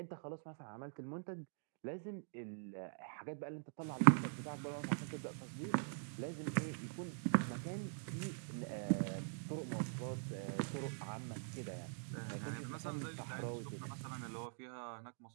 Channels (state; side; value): silent; left; digital silence